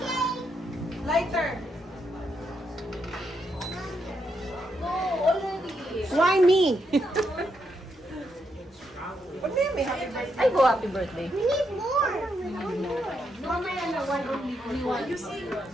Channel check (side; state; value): both; normal; correlation 0.80